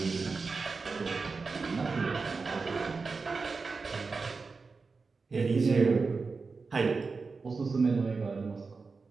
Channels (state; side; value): quieter; left; 4.4 dB